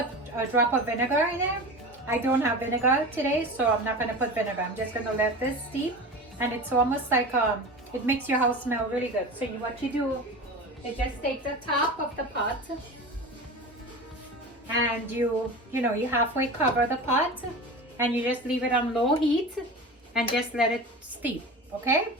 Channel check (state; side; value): normal; both; correlation 0.31